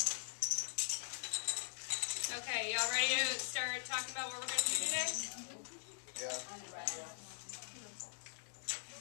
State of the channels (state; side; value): silent; right; digital silence